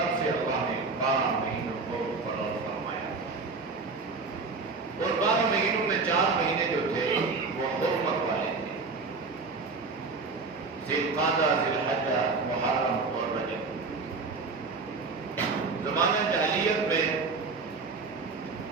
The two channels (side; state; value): left; quieter; 4.2 dB